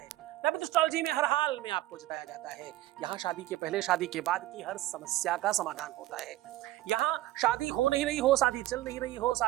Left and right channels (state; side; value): quieter; left; 15.9 dB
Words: लव विद एस्ट्रोलॉजी में हर हाल में आपको जिताया जाता है। यहाँ शादी के पहले, शादी के बाद की हर समस्या का समाधान होता है। यहाँ शादी हो नहीं रही हो, शादी चल नहीं रही हो,